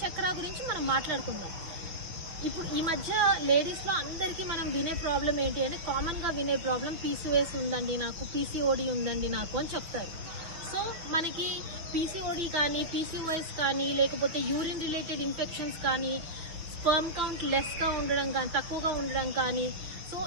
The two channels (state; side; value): late; left; 6.2 ms